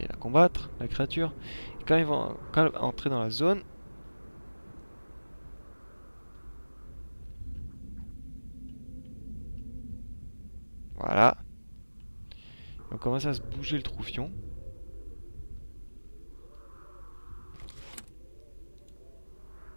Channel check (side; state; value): both; inverted; correlation -1.00